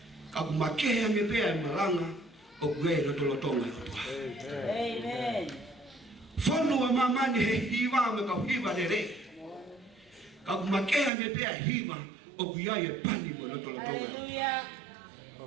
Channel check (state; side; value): drops out; left; at 11.1 s